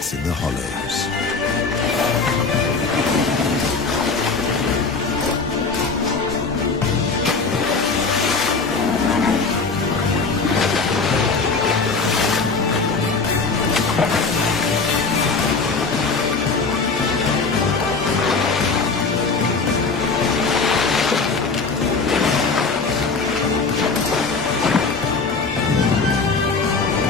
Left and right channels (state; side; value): quieter; right; 4.4 dB